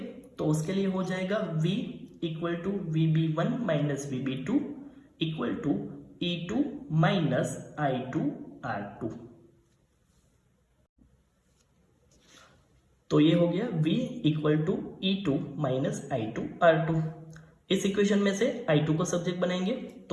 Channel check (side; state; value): both; identical; correlation 1.00